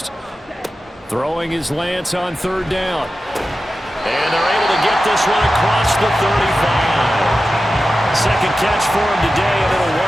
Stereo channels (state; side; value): normal; both; correlation 0.93